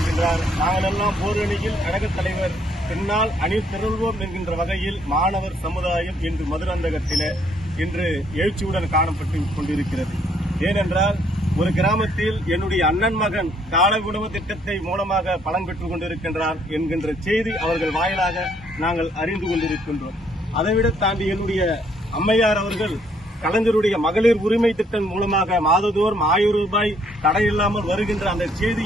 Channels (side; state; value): both; normal; correlation 0.67